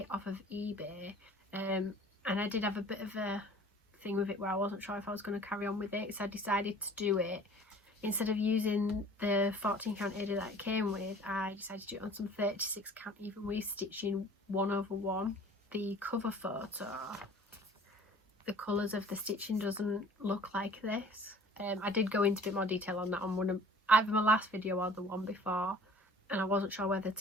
off of eBay, and I did have a bit of a thing with it where I wasn't sure if I was going to carry on with it, so I decided to do it. Instead of using the 14 count Ada that it came with, I decided to do it on some 36 count even with stitching 1/1. The cover photo, the colours of the stitching doesn't look like this. I did go into a bit more detail on that on one of either my last video or the one before, and I wasn't sure whether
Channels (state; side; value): normal; both; correlation 0.49